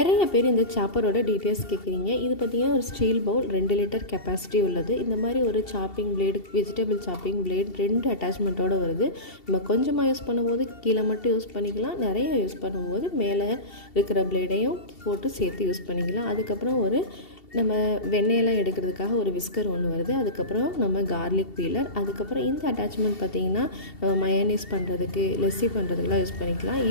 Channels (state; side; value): late; right; 2.7 ms